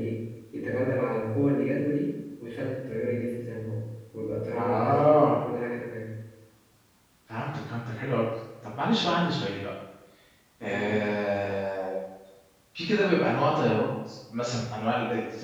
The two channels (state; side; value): identical; both; correlation 1.00